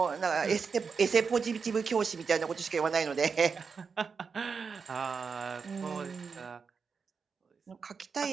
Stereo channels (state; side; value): quieter; left; 5.5 dB